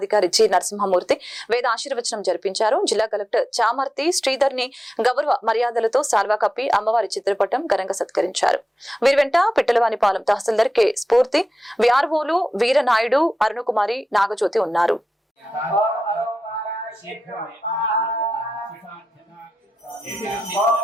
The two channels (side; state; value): both; normal; correlation 0.92